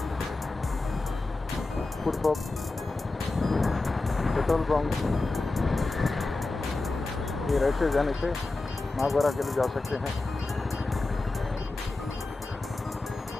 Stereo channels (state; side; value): quieter; right; 3.3 dB